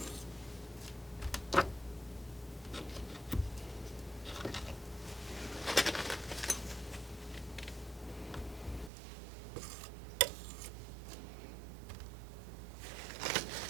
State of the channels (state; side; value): drops out; left; at 8.9 s